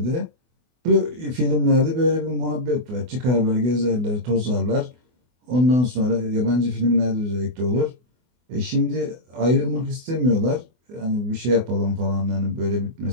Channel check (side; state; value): left; late; 24 ms